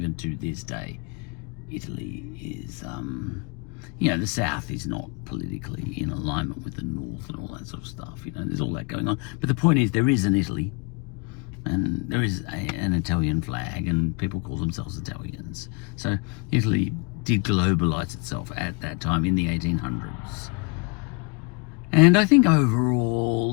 to this day, Italy is, you know, the South is not politically in alignment with the North and all that sort of stuff. You know, there's all that going on. But the point is, there is an Italy, and there is an Italian flag, and people call themselves Italians. So Italy did globalize itself at that time in the 1800s. And I think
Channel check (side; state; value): right; quieter; 31.0 dB